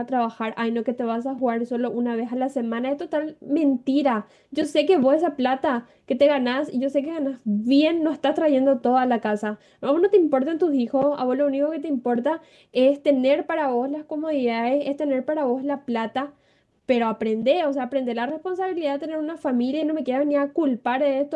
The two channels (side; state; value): both; identical; correlation 1.00